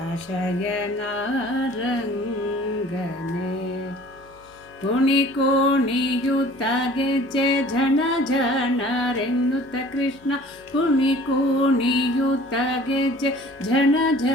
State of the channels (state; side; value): noise; left; hum, 28 dB below the sound